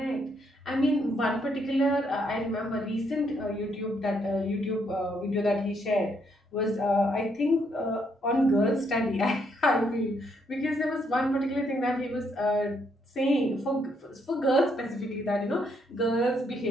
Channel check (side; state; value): both; normal; correlation 0.73